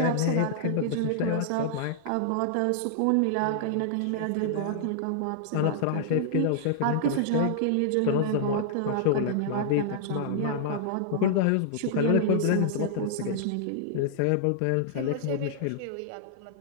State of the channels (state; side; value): different; both; correlation -0.01